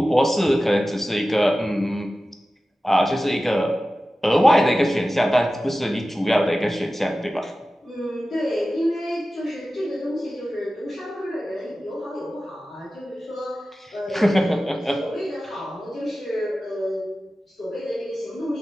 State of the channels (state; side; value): normal; both; correlation 0.95